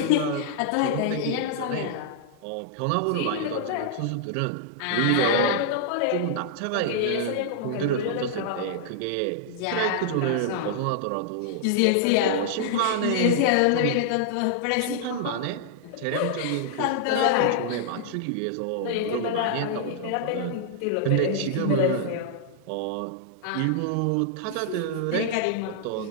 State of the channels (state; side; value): different; both; correlation -0.01